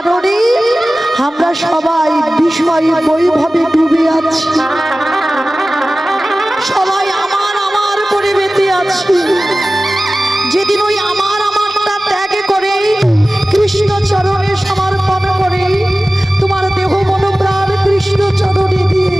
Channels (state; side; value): normal; both; correlation 0.97